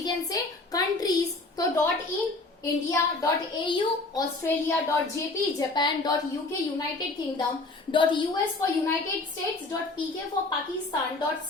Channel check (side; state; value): right; quieter; 3.2 dB